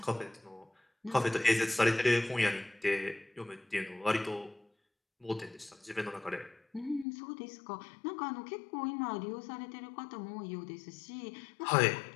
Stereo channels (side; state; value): right; drops out; at 7.1 s